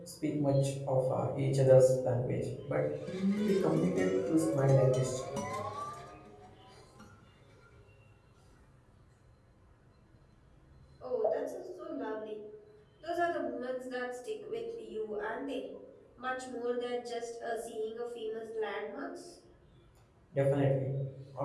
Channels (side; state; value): both; identical; correlation 1.00